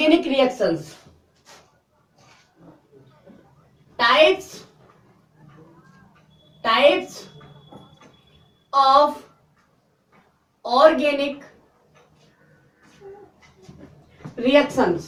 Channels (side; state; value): both; identical; correlation 1.00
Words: reactions, types of organic